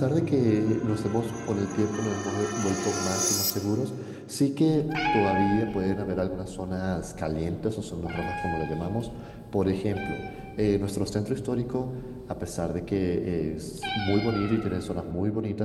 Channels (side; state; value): both; identical; correlation 1.00